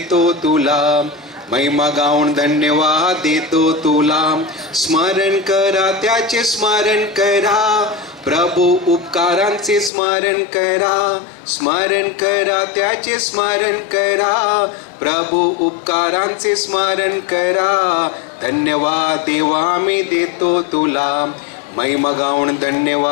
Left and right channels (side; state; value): right; drops out; at 9.9 s